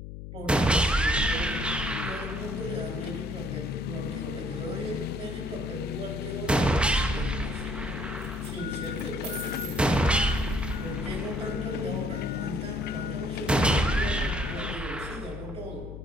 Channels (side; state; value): left; noise; hum, 10 dB below the sound